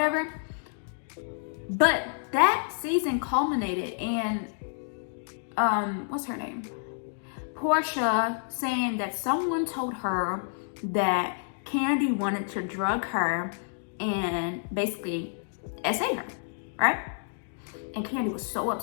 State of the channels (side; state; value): right; silent; digital silence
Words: But that season culminated in, what's her name? Portia saying that someone told her that Kandi wanted to drug her and basically SA her, right? And Kandi was so